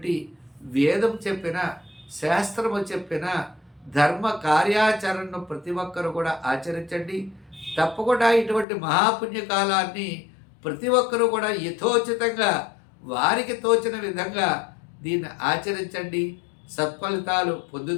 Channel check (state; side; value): drops out; right; at 8.7 s